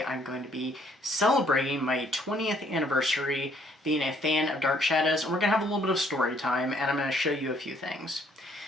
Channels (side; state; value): both; normal; correlation 0.65